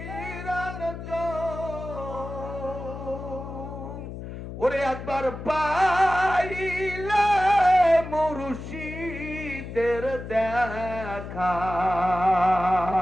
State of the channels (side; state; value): left; noise; hum, 10 dB below the sound